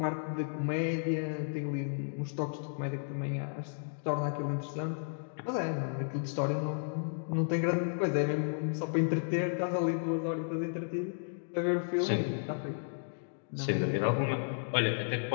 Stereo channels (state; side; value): silent; right; digital silence